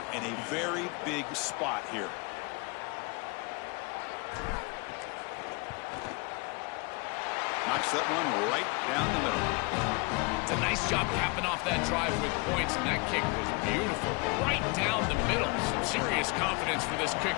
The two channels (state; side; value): quieter; right; 29.0 dB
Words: in a very big spot here. Knocks that one right down the middle. It's a nice job capping off that drive with points, and that kick was beautiful. Right down the middle. Some serious confidence for this